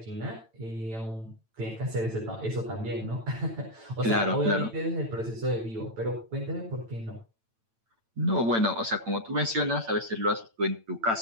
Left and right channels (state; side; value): late; left; 8.9 ms